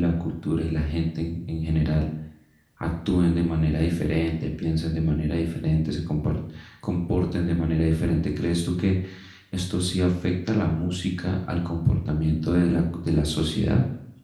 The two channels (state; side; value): identical; both; correlation 1.00